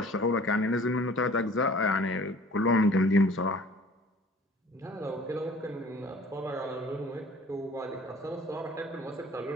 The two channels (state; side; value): normal; both; correlation 0.50